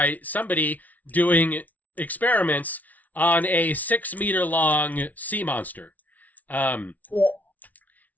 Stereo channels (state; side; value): late; right; 0.074 ms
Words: somebody doing experiments on a 6-meter-long sea monster,